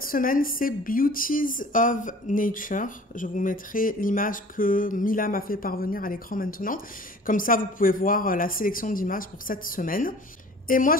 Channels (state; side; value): normal; both; correlation 0.47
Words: semaine, c'est Beauties of Nature. Je vous mettrai l'image que Mila m'a fait parvenir à l'écran maintenant. Comme ça, vous pouvez voir la sélection d'images pour cette semaine. Et moi,